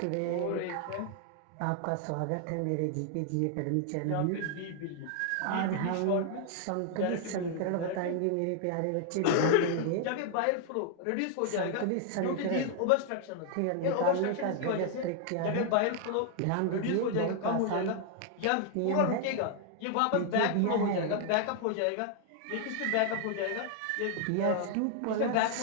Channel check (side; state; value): both; different; correlation 0.00